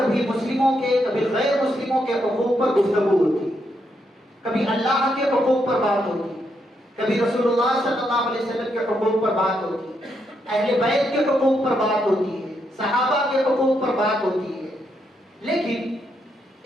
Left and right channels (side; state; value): both; normal; correlation 0.79